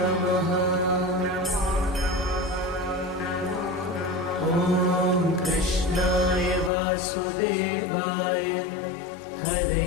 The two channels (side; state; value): right; drops out; at 6.7 s